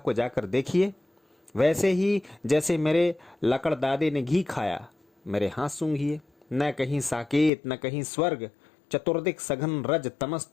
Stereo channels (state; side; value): drops out; right; at 7.5 s